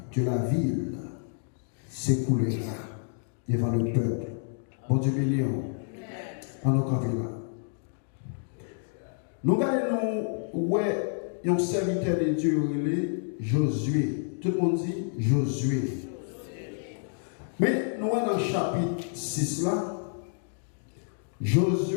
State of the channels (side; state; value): right; silent; digital silence